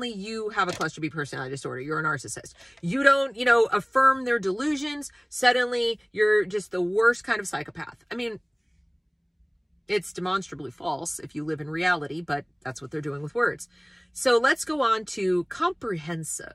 you have a cluster B personality disorder. You're a narcissist. You don't, affirm their delusions, suddenly you're just the worst kind of psychopath. I mean, it's demonstrably false if you live in reality, but that's what they're doing with words. So let's go on to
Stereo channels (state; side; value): identical; both; correlation 1.00